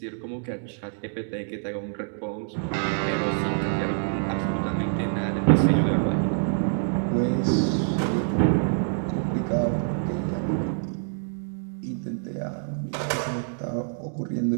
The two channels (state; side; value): silent; left; digital silence